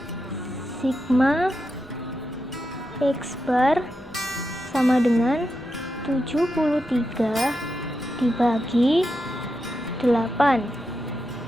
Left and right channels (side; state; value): both; normal; correlation 0.87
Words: Sigma X bar sama dengan 73 dibagi 8